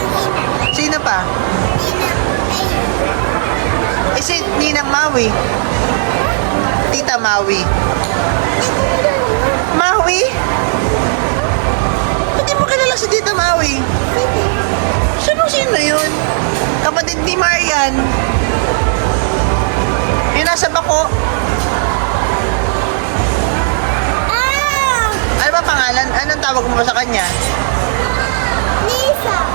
Sino pa? Ninang. Ay. Si Ninang Maui. Tita Maui. Maui? Hindi mo kilala si Tita Maui? Sino yun? Kapatid ni Marian. Yung nasa bako. Ano ba pangalan? Anong tawag mo sa kanya? Lisa.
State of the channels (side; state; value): left; silent; digital silence